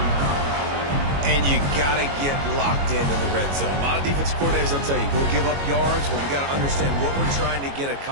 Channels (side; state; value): left; late; 22 ms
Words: And you got to get locked into the red zone. A lot of defense coordinators, they'll tell you, we'll give up yards, but we got to understand what we're trying to get